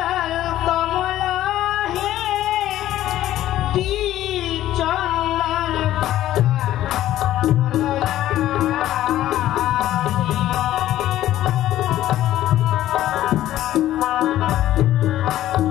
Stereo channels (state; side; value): quieter; right; 13.5 dB